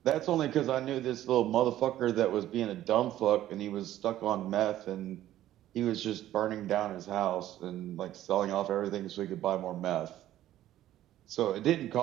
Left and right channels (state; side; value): quieter; left; 13.3 dB